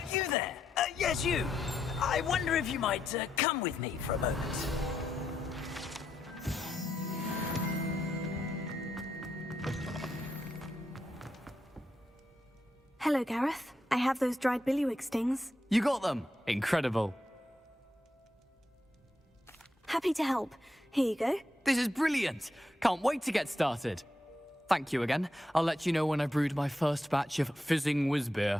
You there? Yes, you. I wonder if you might come with me for a moment. Hello, Gareth. I have those dried billywig stings. You got them! Incredible. Happy to help. Here you go. This is brilliant! Can't wait to get started. Thank you again. I'll let you know when I've brewed my first batch of fizzing whiz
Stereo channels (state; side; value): normal; both; correlation 0.82